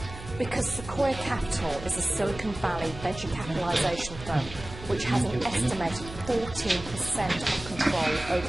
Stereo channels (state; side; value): noise; right; hum, 13 dB below the sound